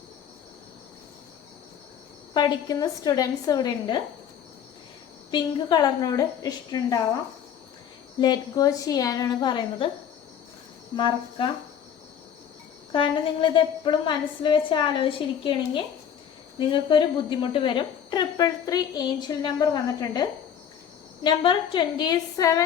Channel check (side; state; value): right; quieter; 8.7 dB